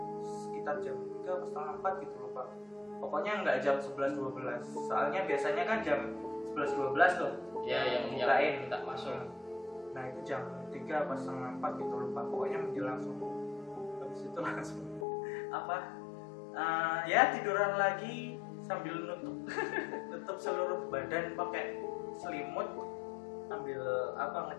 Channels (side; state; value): right; drops out; at 15.1 s